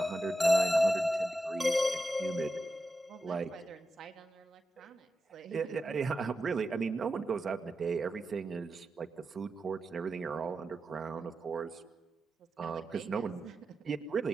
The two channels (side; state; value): both; normal; correlation 0.91